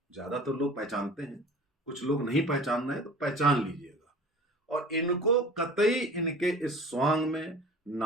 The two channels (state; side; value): normal; both; correlation 0.42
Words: ज्यादा तो लोग पहचानते हैं, कुछ लोग नहीं पहचान रहे, तो पहचान लीजिएगा और इनको कतई इनके इस स्वांग में,